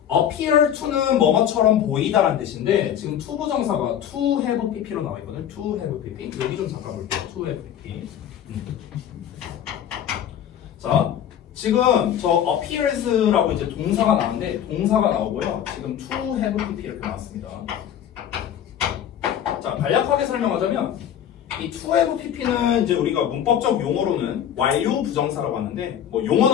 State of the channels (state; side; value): quieter; right; 9.8 dB